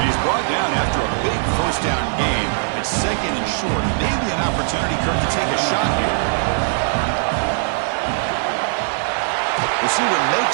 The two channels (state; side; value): silent; left; 63 dB below the other